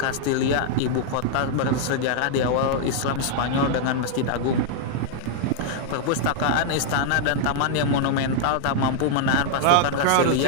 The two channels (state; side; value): different; both; correlation 0.00